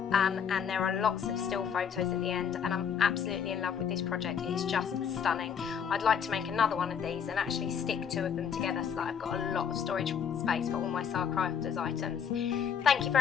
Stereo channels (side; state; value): right; quieter; 7.5 dB